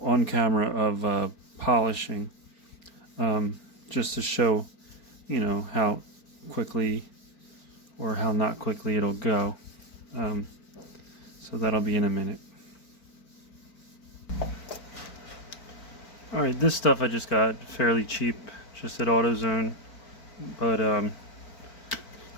camera of polishing, just to show, you know, how quickly or how not quickly it'll go. So that'll be in a minute. Alright, this stuff I just got fairly cheap, just at AutoZone. But I'm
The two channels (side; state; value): right; late; 4.5 ms